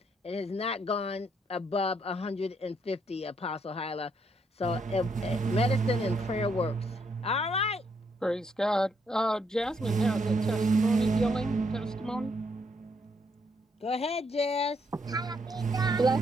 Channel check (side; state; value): both; normal; correlation 0.74